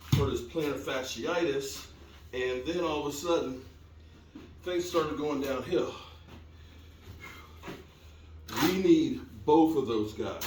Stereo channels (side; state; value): both; identical; correlation 1.00